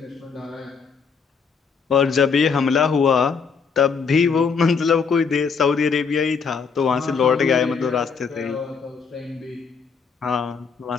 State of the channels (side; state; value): right; quieter; 5.7 dB